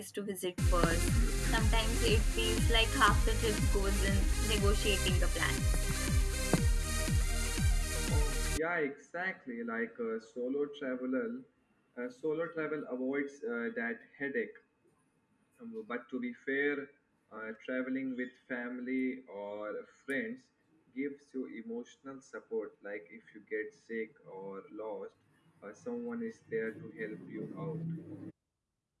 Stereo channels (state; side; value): identical; both; correlation 1.00